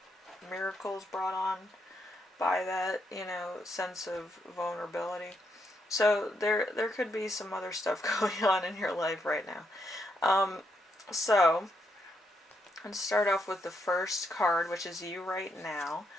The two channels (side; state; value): both; normal; correlation 0.78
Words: miracles brought on by that, sense of vulnerability. So there could be some other stuff going on in your life right now. So let's start off with the first card, which is you right now.